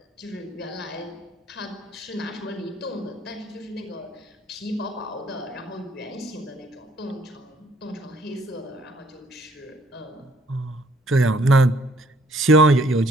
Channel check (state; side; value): normal; both; correlation 0.63